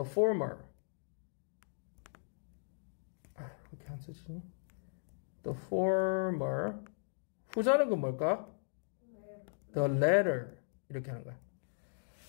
former. 왜 이렇게 안 써지니? the former. 후자는 그 뭘까? the latter. 이렇게 하는 거야.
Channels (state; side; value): silent; right; digital silence